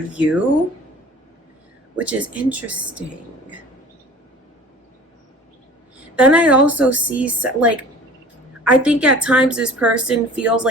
which is interesting. Then I also see, like, I think at times this person feels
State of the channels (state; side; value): normal; both; correlation 0.44